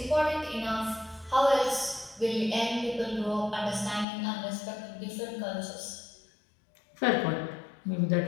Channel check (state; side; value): drops out; right; at 4.0 s